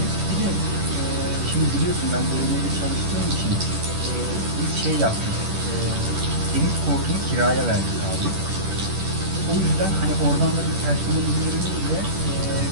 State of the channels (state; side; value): late; left; 10 ms